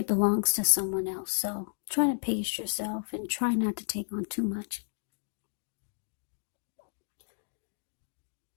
belongs to someone else. So try to pace yourself and try not to take on too much.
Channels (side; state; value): right; silent; digital silence